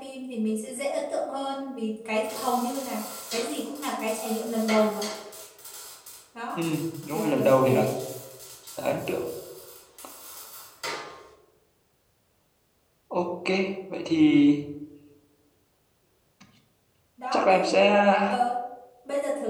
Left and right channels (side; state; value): both; identical; correlation 1.00